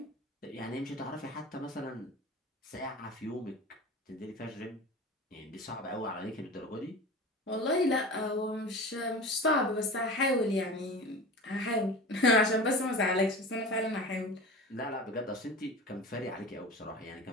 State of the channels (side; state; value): both; normal; correlation 0.34